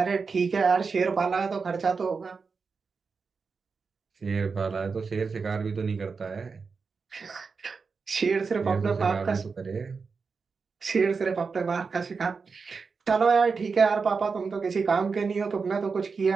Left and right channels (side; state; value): left; quieter; 5.0 dB